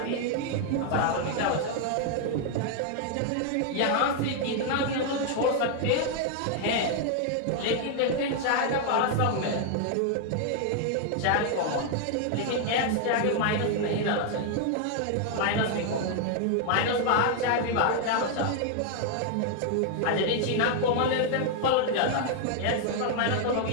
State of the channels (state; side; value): different; both; correlation 0.00